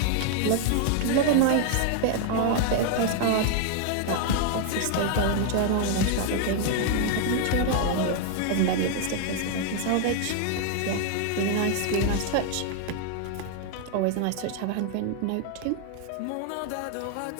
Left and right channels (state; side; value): different; both; correlation 0.00